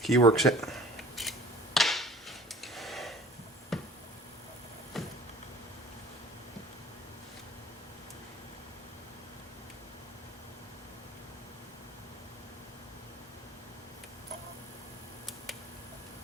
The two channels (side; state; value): both; normal; correlation 0.47